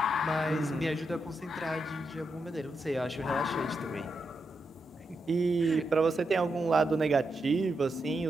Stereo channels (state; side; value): normal; both; correlation 0.85